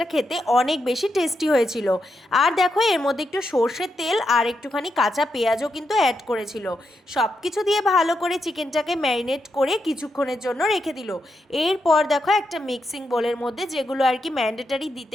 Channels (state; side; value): normal; both; correlation 0.84